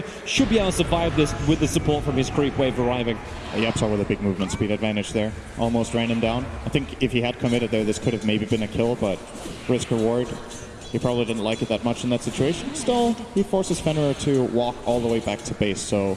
should be able to survive this with the support from his creep wave arriving. YapzOr with a big movement speed advantage there. Almost ran him down. I think if he had committed there, this could have maybe been a kill, but risk reward. He probably didn't like it that much in that situation. Still, he forces Fenrir to walk all the way back to base, so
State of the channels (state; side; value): identical; both; correlation 1.00